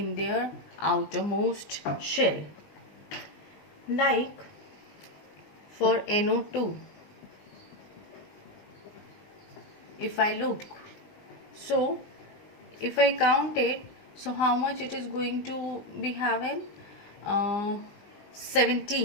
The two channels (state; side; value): late; right; 20 ms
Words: their outermost shell. Like for NO2, if I look, so if I count it, so how much it is going to be having?